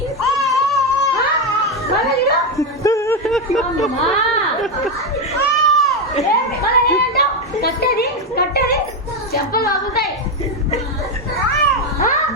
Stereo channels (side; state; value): both; normal; correlation 0.09